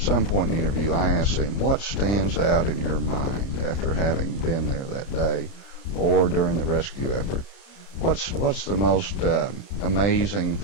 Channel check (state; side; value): late; right; 30 ms